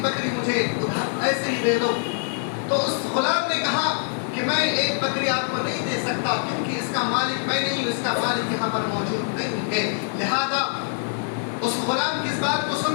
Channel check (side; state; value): right; silent; digital silence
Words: بکری مجھے ایسے ہی دے دو. تو اس غلام نے کہا کہ میں ایک بکری آپ کو نہیں دے سکتا کیونکہ اس کا مالک میں نہیں ہوں، اس کا مالک یہاں پر موجود نہیں ہے. لہذا اس غلام کی اس بات کو